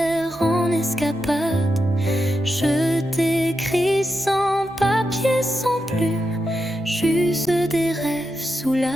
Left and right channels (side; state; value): both; normal; correlation 0.86